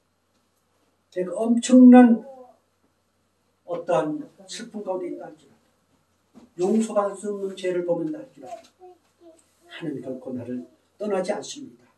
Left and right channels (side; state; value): both; identical; correlation 1.00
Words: 내가 엄청난 어떠한 슬픔 가운데 있다 할지라도 용서받을 수 없는 죄를 범한다 할지라도 하나님 결코 나를 떠나지 않습니다.